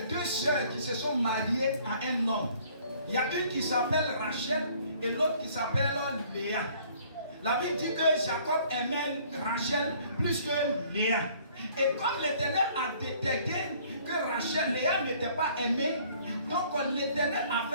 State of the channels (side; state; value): both; inverted; correlation -0.58